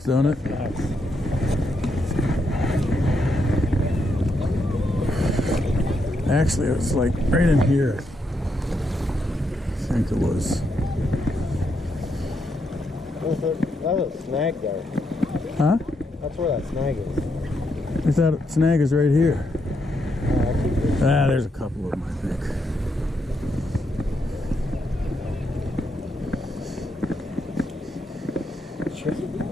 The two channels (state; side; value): normal; both; correlation 0.79